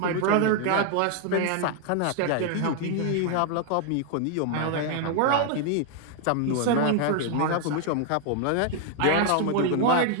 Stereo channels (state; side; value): different; both; correlation 0.00